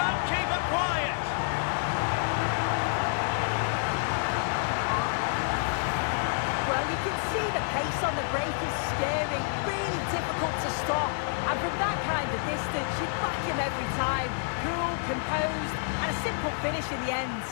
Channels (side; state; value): right; silent; 59 dB below the other